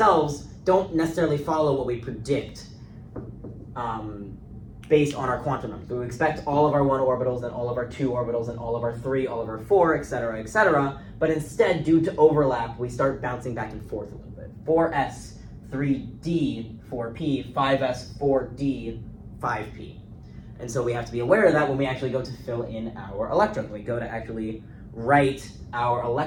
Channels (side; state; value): both; identical; correlation 1.00